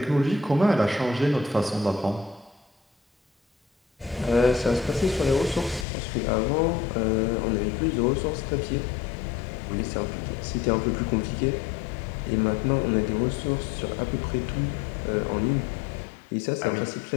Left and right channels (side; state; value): right; drops out; at 5.9 s